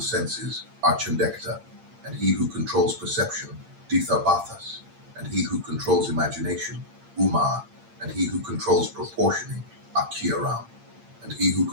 senses are Chandekta, and he who controls perception, Dithabathas, and he who controls imagination, Umar, and he who controls proportioning, Akiaram, and he who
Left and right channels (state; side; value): late; left; 8.7 ms